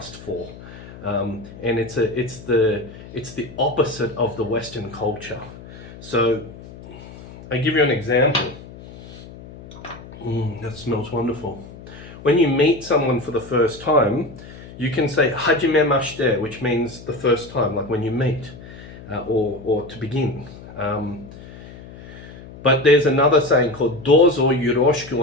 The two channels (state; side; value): noise; left; hum, 16 dB below the sound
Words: for. And it's the opposite of the Western culture. So I give you an example. That smells wonderful. When you meet someone for the first time, you can say hajimemashite, which means the first time, like when you meet, or to begin. But there's another saying called dozo yoroshiku